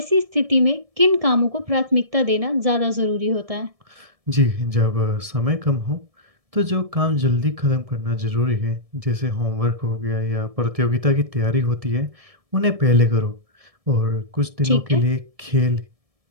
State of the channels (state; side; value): late; left; 1.7 ms